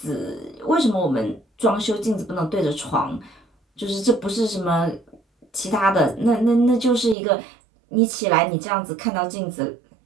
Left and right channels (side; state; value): left; drops out; at 7.2 s